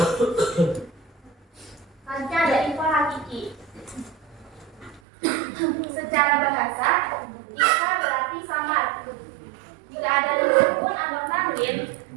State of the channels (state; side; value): drops out; left; at 5.0 s